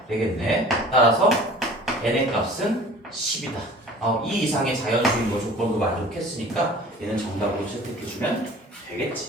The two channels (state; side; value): normal; both; correlation 0.45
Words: 되겠네. 따라서 n의 값은 10이다. 이 이상의 자연수인 거 조건도 만족했으니까 얘는 정답으로 채택해주면